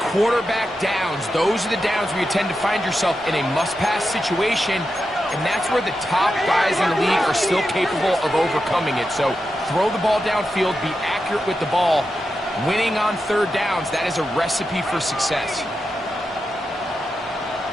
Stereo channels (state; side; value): normal; both; correlation 0.89